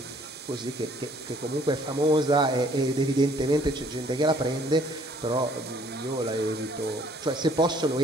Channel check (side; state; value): both; normal; correlation 0.60